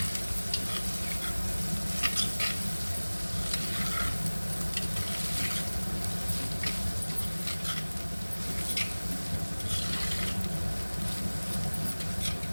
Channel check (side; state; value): both; inverted; correlation -1.00